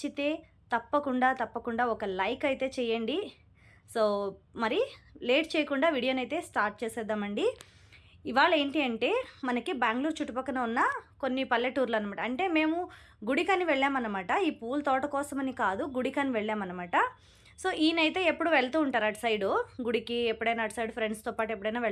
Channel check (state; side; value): identical; both; correlation 1.00